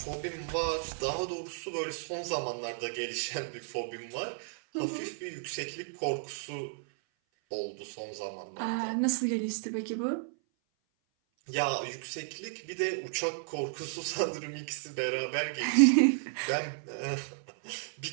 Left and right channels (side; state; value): left; silent; 56 dB below the other